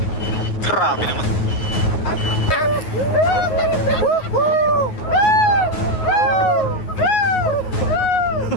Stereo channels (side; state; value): right; late; 9.5 ms